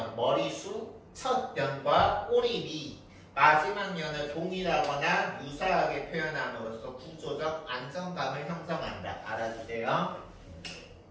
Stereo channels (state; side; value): identical; both; correlation 1.00